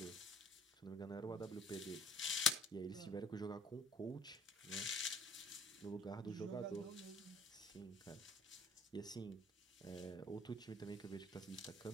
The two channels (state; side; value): normal; both; correlation 0.52